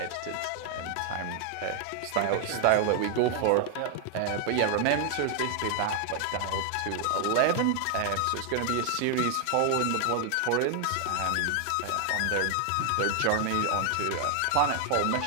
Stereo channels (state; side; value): different; both; correlation 0.00